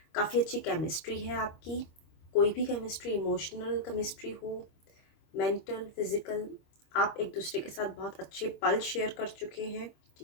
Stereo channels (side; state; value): right; late; 25 ms